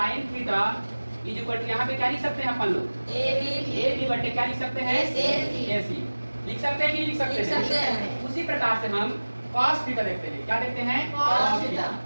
theta is equal to, यहाँ पे क्या लिख सकते हैं अपन लोग, ए बी बटे क्या लिख सकते हैं, ए सी। लिख सकते हैं कि लिख सकते हैं। उसी प्रकार से हम cos थीटा देखते हैं। क्या देखते हैं, cos थीटा।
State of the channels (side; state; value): both; inverted; correlation -1.00